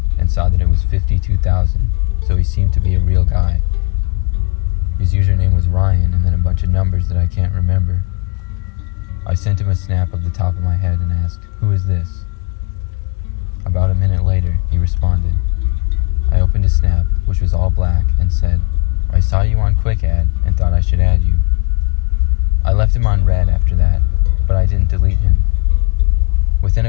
and saw that it was 52,000, so he seemed to be a real guy. His username was Ryan and then a bunch of numbers that I can't remember. I sent him a snap of the top of my head and asked, "Who is this?" About a minute later, he responded. I opened his snap, which was all black, and said, "I saw you on Quick Add and thought I should add you." I left him on red after that, but I didn't delete him. Within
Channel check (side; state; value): right; quieter; 33.0 dB